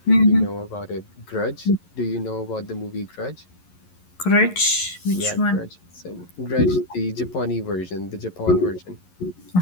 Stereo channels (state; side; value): late; right; 11 ms